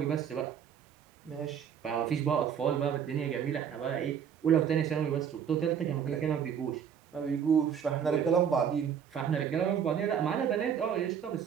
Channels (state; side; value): quieter; left; 8.1 dB